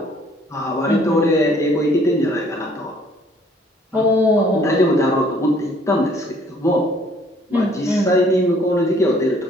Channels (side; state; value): both; normal; correlation 0.60